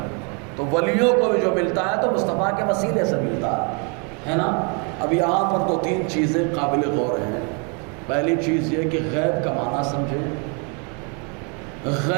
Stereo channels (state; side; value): quieter; left; 35.9 dB